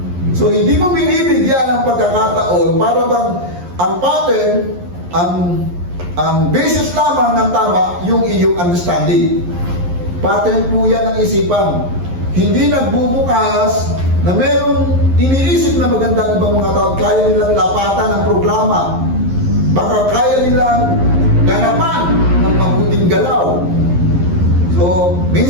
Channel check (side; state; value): left; late; 11 ms